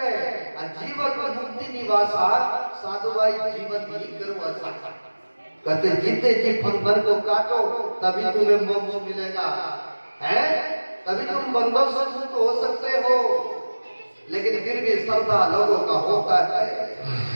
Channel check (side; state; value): both; inverted; correlation -1.00